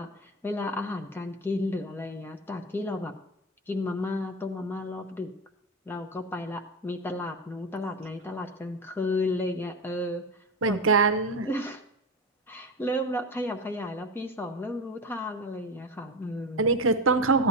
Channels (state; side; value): normal; both; correlation 0.20